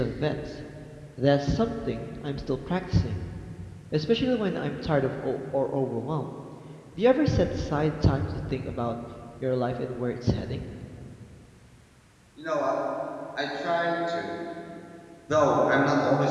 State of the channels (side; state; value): both; identical; correlation 1.00